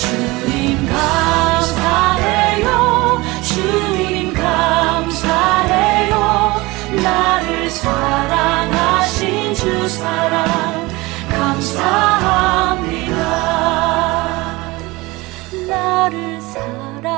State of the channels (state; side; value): quieter; left; 22.1 dB